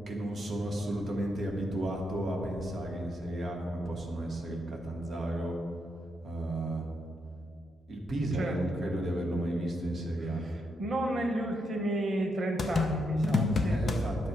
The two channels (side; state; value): both; normal; correlation 0.80